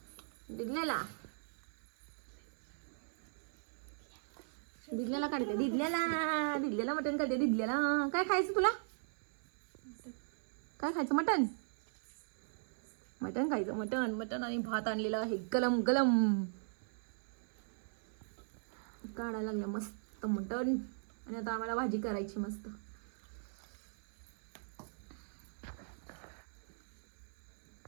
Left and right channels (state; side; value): silent; left; 52 dB below the other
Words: दिदल्याला. दिदल्याला काढते. दिदल्याला मटण काढते. दिदल्याला काय खायचं तुला? काय खायचं? मटण. मटण खायचं. मटण मटण आणि भात आणलेला आहे गलम गलम. काढायला लागलं मस्त मटण. आणि आता आम्हाला भाजी करायची मस्त.